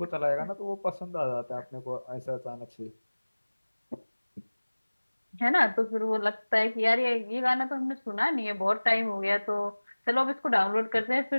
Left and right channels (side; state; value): both; inverted; correlation -1.00